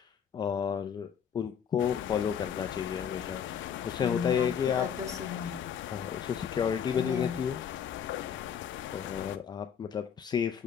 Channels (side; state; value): right; quieter; 7.9 dB